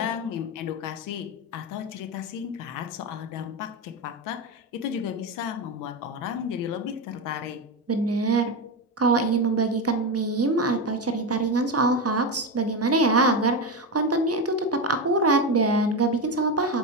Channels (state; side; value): normal; both; correlation 0.15